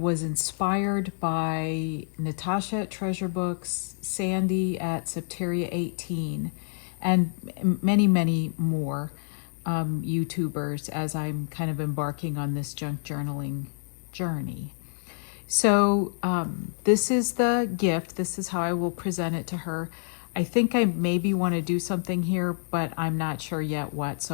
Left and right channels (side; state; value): right; silent; digital silence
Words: inspired by Natasha at Treasure Books, Sandy at Septeria 18, and many more YouTubers as I'm kind of embarking on this junk journaling journey. So this is the gift. This is how I will present it to her. I think I maybe want to do something here, but I'm not sure yet what,